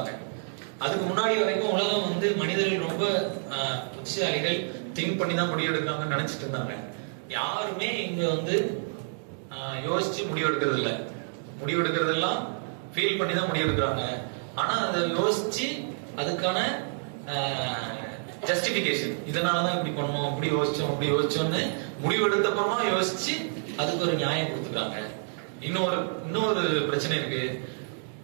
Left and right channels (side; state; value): left; silent; digital silence